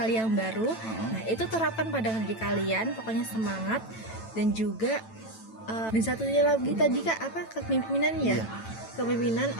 yang baru. Nah, itu terapkan pada diri kalian, pokoknya semangat. Dan juga dan satunya lagi tadi Kak, apa, kepemimpinan ya? Iya. Kepemimpinan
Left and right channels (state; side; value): late; right; 9.0 ms